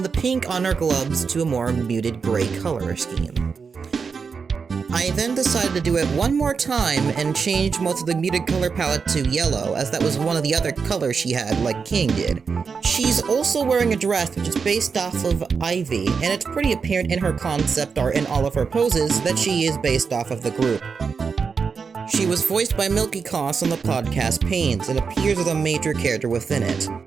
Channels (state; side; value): quieter; left; 5.5 dB